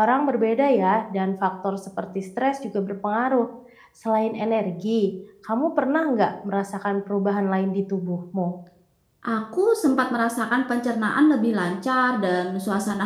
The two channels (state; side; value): identical; both; correlation 1.00